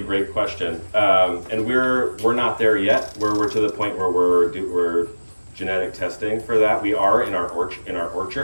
great question, and we're not there yet. We're to the point where we're genetic testing for that. We are in our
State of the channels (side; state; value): both; inverted; correlation -1.00